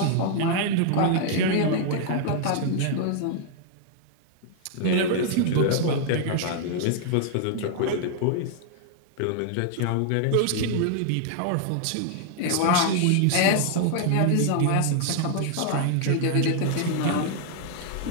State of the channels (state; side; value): different; both; correlation 0.00